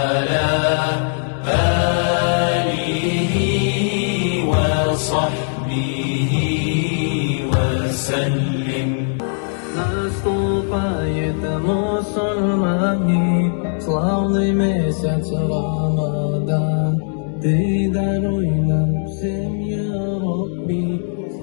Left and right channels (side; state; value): right; silent; digital silence